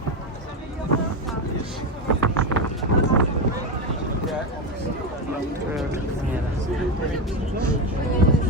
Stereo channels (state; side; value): normal; both; correlation 0.13